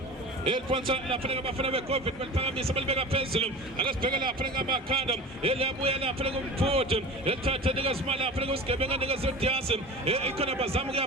eliphonsa lapha-ke abafana be-COVID baliphakamisa balibeka phezulu akesibheke lapha-ke amakhanda eliyabuya lapha-ke umfuthi elithatha nikezima lapha-ke usigebenga nikeze udiasi ikhona bazama ukuya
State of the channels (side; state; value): both; normal; correlation 0.35